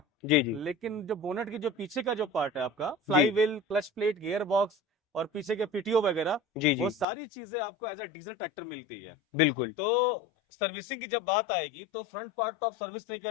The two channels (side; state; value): right; drops out; at 7.1 s